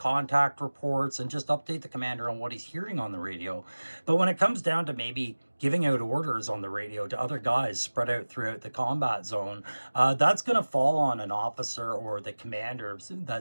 reports, and just update the commander on what he's hearing on the radio. But when it comes down to maybe giving out orders on the radio to other guys spread out throughout the combat zone, that's going to fall on an officer or the commander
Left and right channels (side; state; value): both; inverted; correlation -1.00